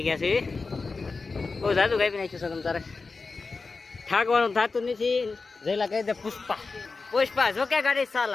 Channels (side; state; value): right; quieter; 4.2 dB